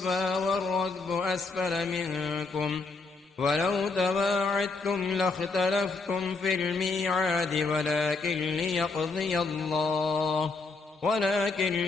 والركب أسفل منكم ولو تواعدتم لاختلفتم في الميعاد ولكن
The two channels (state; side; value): quieter; right; 4.0 dB